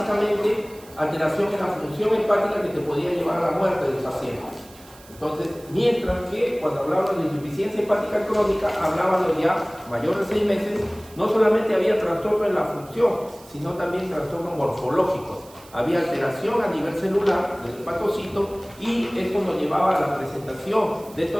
alteración en la función hepática que te podía llevar a la muerte del paciente. Entonces, mientras que cuando hablábamos de insuficiencia hepática crónica, hablábamos ya mayor de 6 meses, no solamente había trastorno en la función, sino también trastornos morfológicos. Había alteración a nivel celular del hepatocito y esto nos llevaba a la presentación de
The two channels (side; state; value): right; noise; hiss, 23 dB below the sound